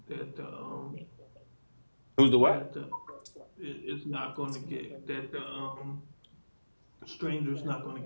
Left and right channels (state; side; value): inverted; both; correlation -1.00